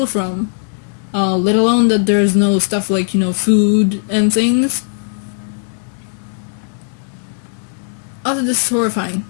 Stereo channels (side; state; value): right; silent; 68 dB below the other